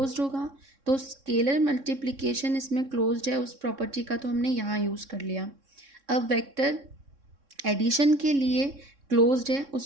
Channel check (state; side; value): late; left; 3.6 ms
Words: होगा। तो स्केलर मल्टीप्लिकेशन इसमें क्लोज्ड है, उस प्रॉपर्टी का तो हमने यहाँ यूज़ कर लिया। अब वेक्टर एडिशन के लिए क्लोज्ड है,